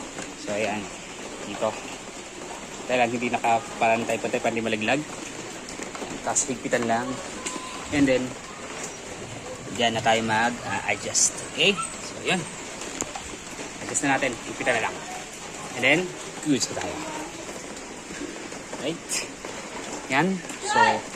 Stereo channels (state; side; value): identical; both; correlation 1.00